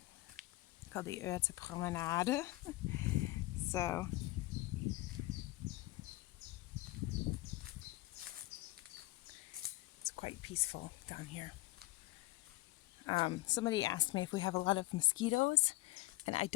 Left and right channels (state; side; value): quieter; right; 19.4 dB